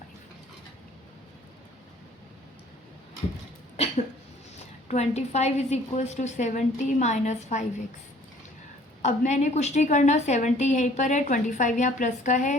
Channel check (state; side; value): normal; both; correlation 0.55